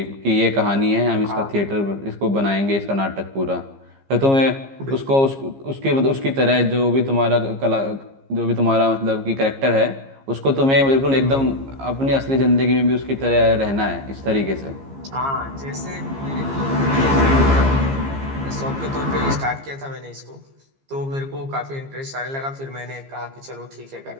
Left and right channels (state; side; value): late; left; 15 ms